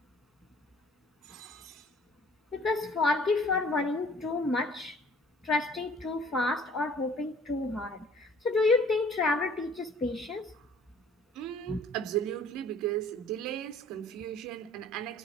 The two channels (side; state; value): both; normal; correlation 0.53